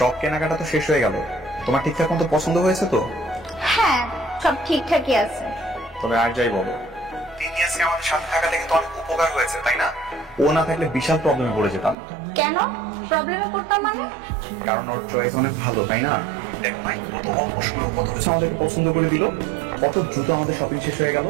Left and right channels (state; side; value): drops out; left; at 12.0 s